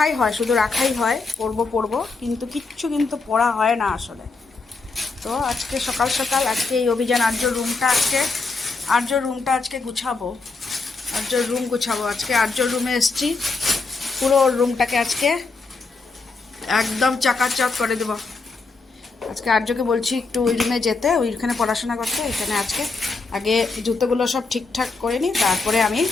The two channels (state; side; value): quieter; right; 4.0 dB